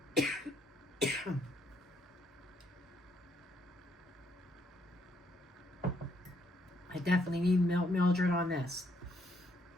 I definitely need Mildred on this.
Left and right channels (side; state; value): both; normal; correlation 0.71